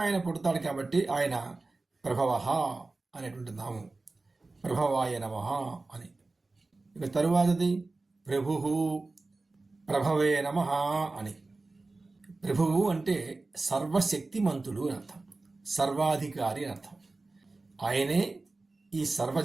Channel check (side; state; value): left; quieter; 3.4 dB